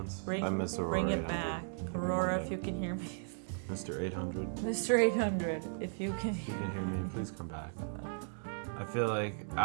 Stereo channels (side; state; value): left; silent; digital silence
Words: I miss Aurora Bring it 800. back. Maybe Aurora, one if day. you can hear me. Mr. 800. Mr. 800, if you can If you hear can hear me, please come back. I feel like